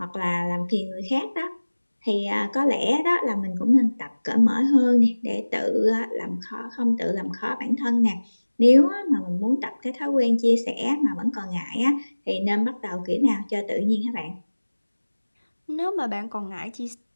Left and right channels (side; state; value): both; inverted; correlation -1.00